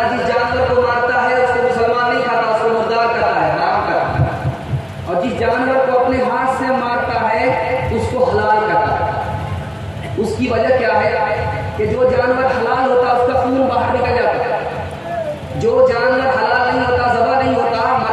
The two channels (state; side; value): identical; both; correlation 1.00